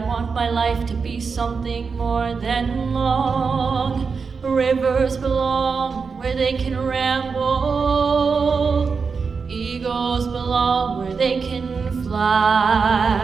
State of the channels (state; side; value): quieter; left; 5.2 dB